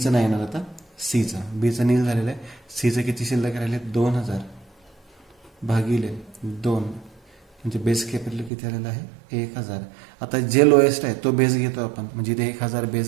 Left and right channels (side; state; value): left; drops out; at 8.5 s